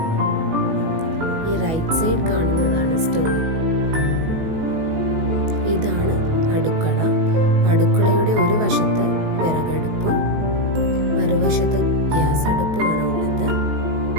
ഈ റൈറ്റ് സൈഡ് കാണുന്നതാണ് സ്റ്റോർ. ഇതാണ് അടുക്കള. അടുക്കളയുടെ ഒരു വശത്ത് വിറകടുപ്പും മറുവശത്ത് ഗ്യാസ് അടുപ്പുമാണ് ഉള്ളത്.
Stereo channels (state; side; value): late; left; 19 ms